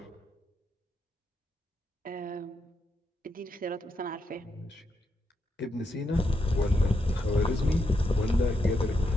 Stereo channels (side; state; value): both; normal; correlation 0.82